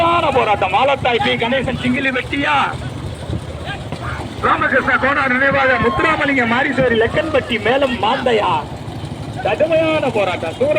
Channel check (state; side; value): identical; both; correlation 1.00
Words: போராட்டம் மாலத்தாய் பி கணேசன் சிங்கிலி வெட்டியா, ராமகிருஷ்ண கோனார் நினைவாக முத்துராமலிங்க மாரிசேரி லெக்கன்பட்டி மேலும் மாந்தையா. கடுமையான போராட்டம்.